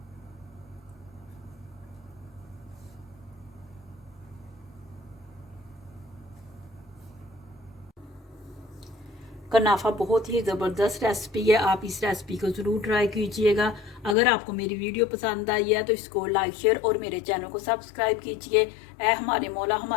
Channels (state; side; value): drops out; right; at 14.2 s